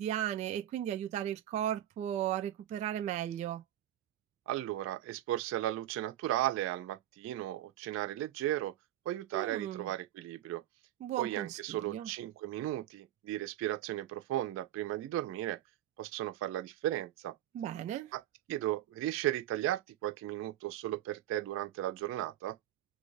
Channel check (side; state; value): left; quieter; 12.9 dB